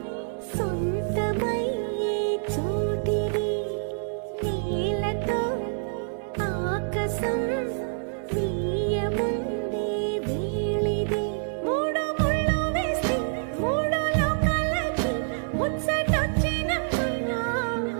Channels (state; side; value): silent; left; digital silence